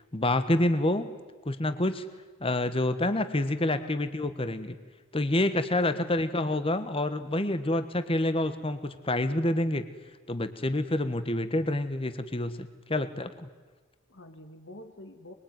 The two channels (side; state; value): both; normal; correlation 0.63